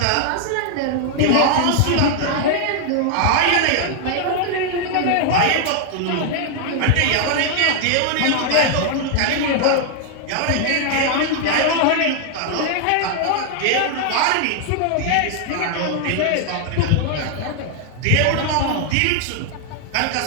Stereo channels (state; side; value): different; both; correlation 0.00